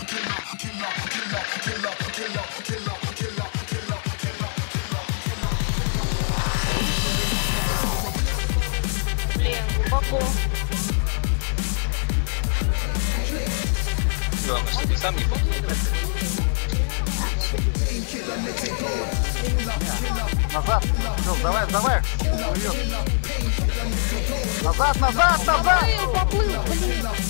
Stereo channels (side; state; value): right; silent; digital silence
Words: killer, killer, killer, killer, killer, killer, killer, killer. Блин, глубоко. Главное, что ты сам не попал. Назад! Ну, давай, давай! Назад, назад, назад! Поплыл, блин!